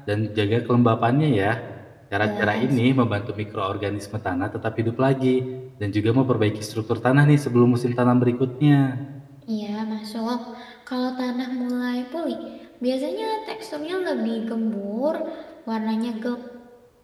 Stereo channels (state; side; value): identical; both; correlation 1.00